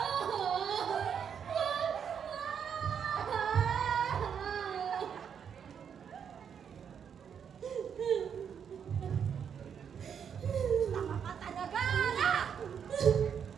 Tama ka talaga!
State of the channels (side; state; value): left; quieter; 7.6 dB